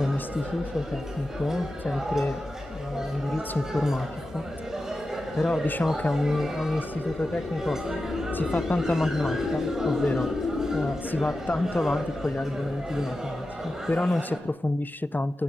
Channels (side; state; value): both; normal; correlation 0.92